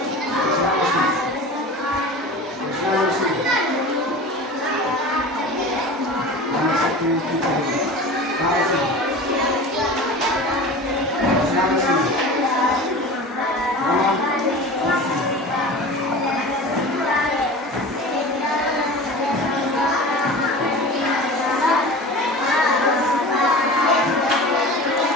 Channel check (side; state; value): both; normal; correlation 0.35